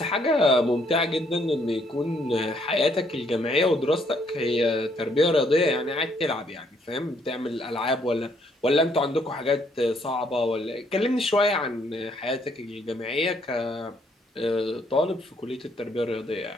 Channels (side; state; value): both; normal; correlation 0.69